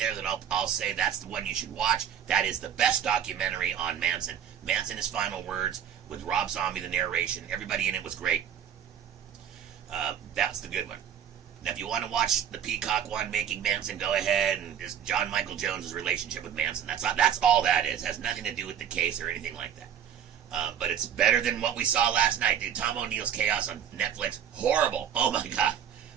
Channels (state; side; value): quieter; left; 9.0 dB